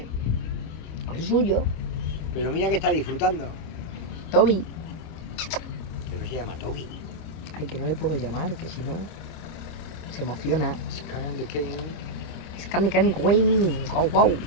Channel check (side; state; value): right; late; 25 ms